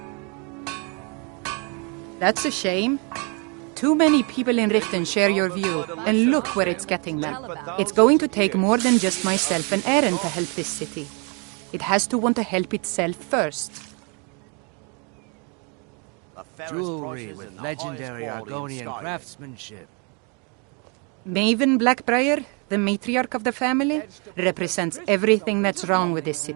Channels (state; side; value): quieter; left; 34.6 dB